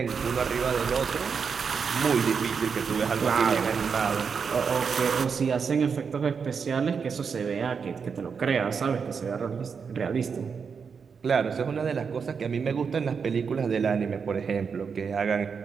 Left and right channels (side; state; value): left; quieter; 6.0 dB